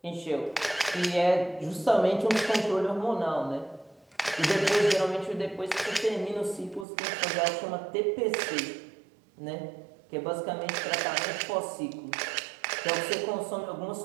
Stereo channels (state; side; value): drops out; left; at 6.9 s